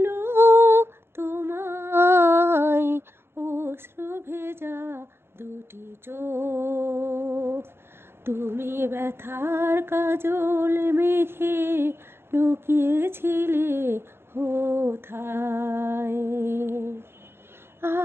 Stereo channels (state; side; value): late; left; 0.11 ms